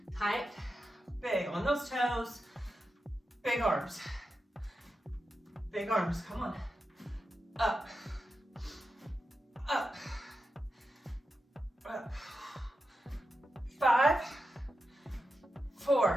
Tight, big. On those toes. Big arms. Big arms. Come on. Up. Up. Up. 5,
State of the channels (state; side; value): normal; both; correlation 0.89